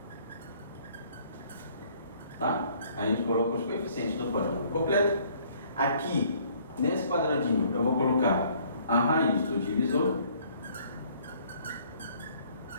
tá? A gente coloca os coeficientes do polinômio completo. Aqui, nesse quadradinho, eu vou colocar a raiz do divisor.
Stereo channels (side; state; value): both; inverted; correlation -0.60